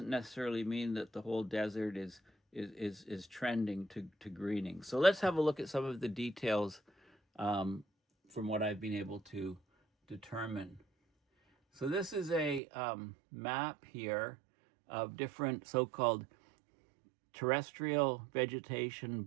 necessarily mean that the whole desert is trending to greening. So let's have a look at some of the details from what I've been able to determine. So this is a map here of different so-called terrestrial vegetation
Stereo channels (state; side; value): drops out; left; at 12.6 s